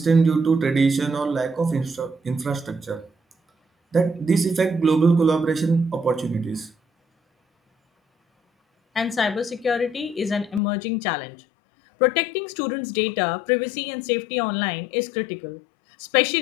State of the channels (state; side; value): drops out; right; at 10.6 s